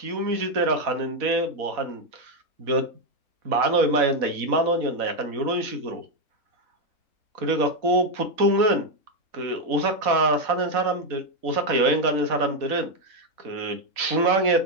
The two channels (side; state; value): left; late; 4.1 ms